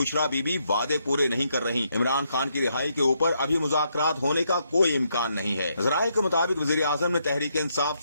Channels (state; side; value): inverted; both; correlation -0.77